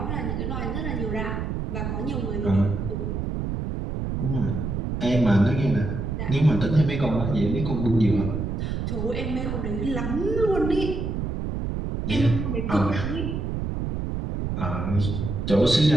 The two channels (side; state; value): right; noise; rumble, 3 dB below the sound